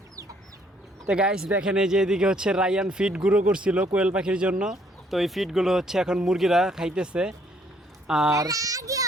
তো গাইস দেখেন এই যে এদিকে হচ্ছে রায়ান ফিড গুঁড়ো করছিল কোয়েল পাখির জন্য। তো এই ফিডগুলো হচ্ছে এখন মুরগিরা খাইতেছে। আর আগে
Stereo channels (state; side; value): normal; both; correlation 0.65